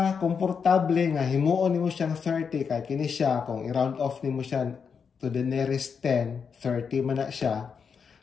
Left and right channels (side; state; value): right; quieter; 6.2 dB